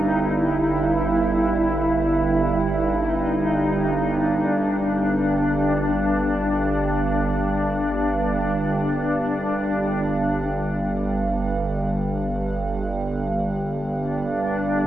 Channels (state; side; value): normal; both; correlation 0.87